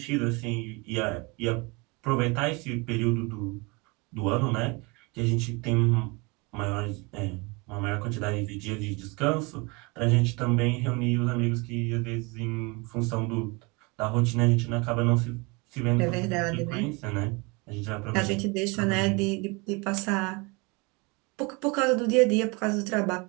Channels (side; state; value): left; quieter; 27.7 dB